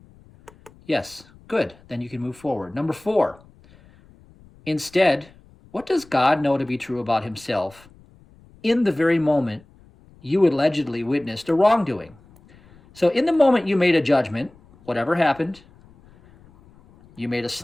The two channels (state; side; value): noise; left; rumble, 27 dB below the sound